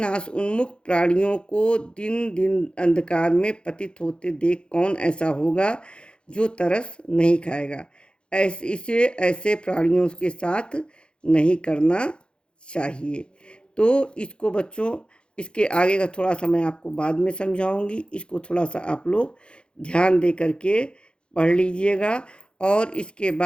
उन्मुख प्राणियों को दिन दिन अंधकार में पतित होते देख कौन ऐसा होगा जो तरस नहीं खाएगा। ऐसे प्राणियों के साथ नहीं करना चाहिए। तो इसको बच्चों, इसके आगे का थोड़ा सा मैं आपको बाद में समझाऊंगी। इसको थोड़ा सा आप लोग ध्यान दे करके पढ़ लीजिएगा, और इसके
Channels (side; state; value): right; late; 0.054 ms